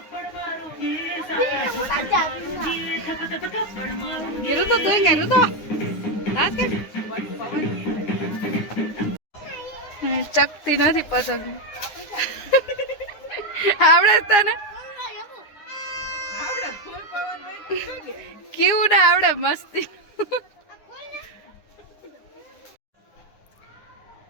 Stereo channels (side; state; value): right; late; 9.7 ms